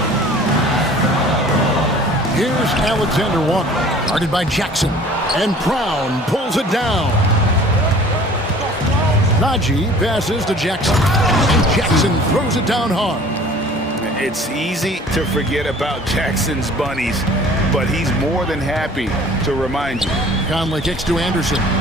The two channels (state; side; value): normal; both; correlation 0.48